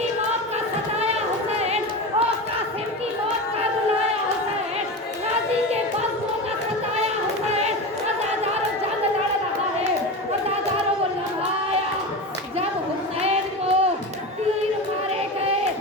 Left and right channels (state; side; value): normal; both; correlation 0.24